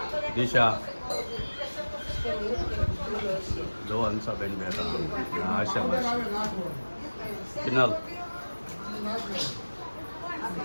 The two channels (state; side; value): inverted; both; correlation -1.00